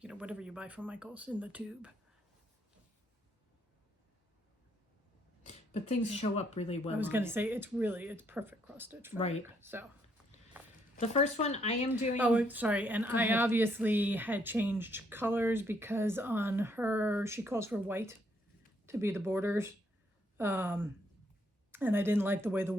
know, whatever you buy from Michael's in the tube. But things show up really well. I was going to say, it's perfect cross stitch fabric. Right. So. The first one I am doing. Oh, sorry. And I ahead. obviously had changed colors because on her, she calls for white to be the borders. And I didn't like the way the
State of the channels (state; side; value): normal; both; correlation 0.71